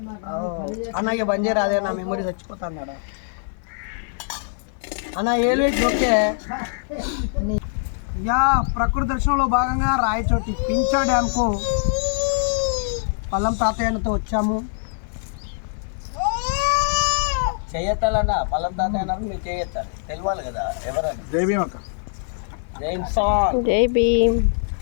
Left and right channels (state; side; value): silent; right; 57 dB below the other